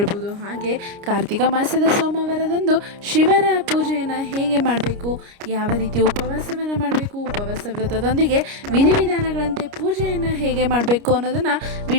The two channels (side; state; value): left; late; 29 ms